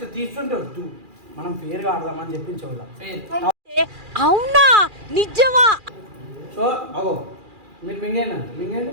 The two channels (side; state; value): left; late; 2.4 ms